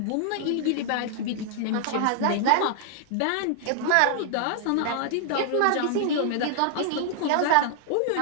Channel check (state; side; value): different; both; correlation 0.00